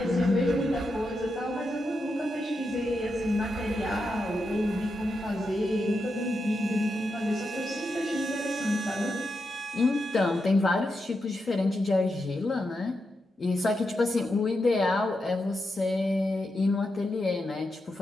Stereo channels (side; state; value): both; normal; correlation 0.86